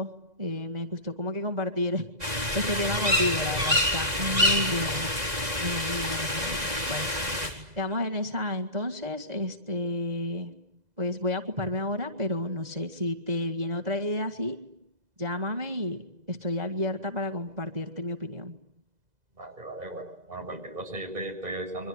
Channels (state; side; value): late; left; 2.0 ms